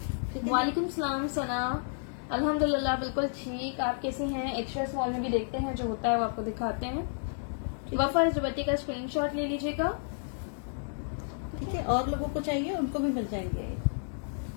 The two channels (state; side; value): silent; right; digital silence